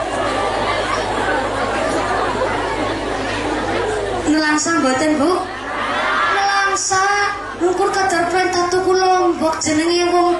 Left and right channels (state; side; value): noise; left; rumble, 28 dB below the sound